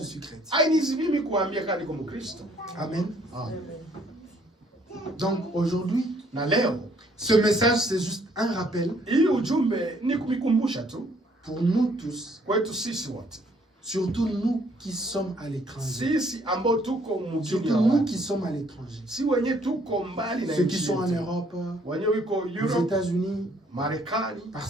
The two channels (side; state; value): both; normal; correlation 0.64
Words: suis chrétien. hainizi mimi kuambia kama niko Mkristo. Amen. Amen. Donc aujourd'hui, Na leo ce message c'est juste un rappel hii ujumbe ni kumikumbusha tu pour nous tous, kwetu sisi wote. surtout nous qui sommes à l'étranger. Sisi ambao tuko mjini Surtout ya nous watu. qui sommes à l'étranger. Si wenye tuko mbali na Ceux qui nchi sont en yetu. Europe, Wenye wiko aux Europe, États-Unis, Marekani,